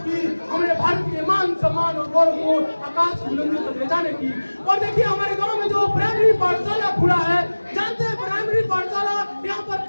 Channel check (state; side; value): inverted; both; correlation -1.00